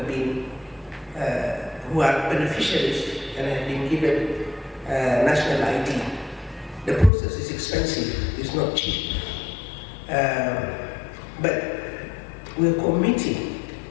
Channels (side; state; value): right; drops out; at 7.1 s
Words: been who are beneficiaries and have been given national ID. The process is expensive, it's not cheap. But we're committing